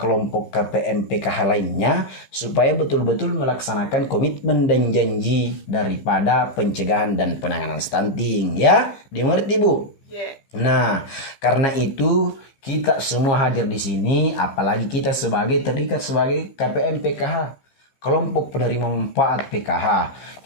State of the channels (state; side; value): late; right; 15 ms